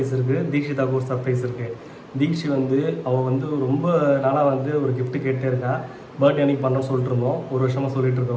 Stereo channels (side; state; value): both; identical; correlation 1.00